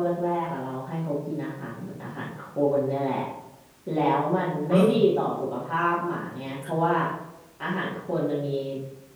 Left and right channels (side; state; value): both; identical; correlation 1.00